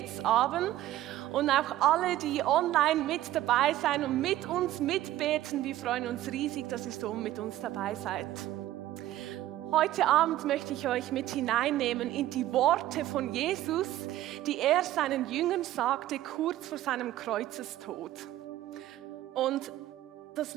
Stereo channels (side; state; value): left; quieter; 14.2 dB